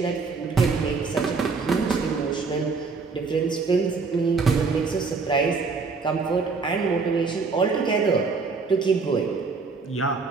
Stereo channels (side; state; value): left; quieter; 4.6 dB